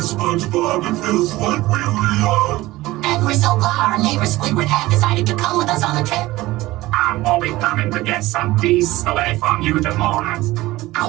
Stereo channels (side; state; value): left; quieter; 18.3 dB